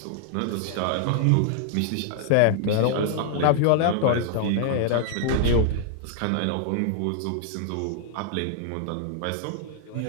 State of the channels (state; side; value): different; both; correlation -0.01